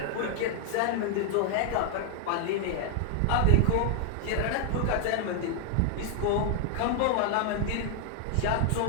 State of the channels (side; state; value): both; different; correlation -0.01